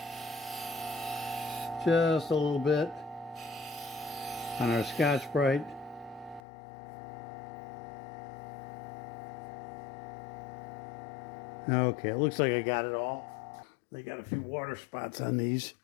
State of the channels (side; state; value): right; drops out; at 6.4 s